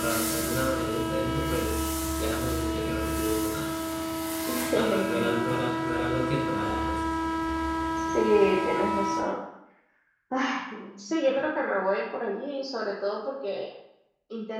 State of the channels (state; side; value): identical; both; correlation 1.00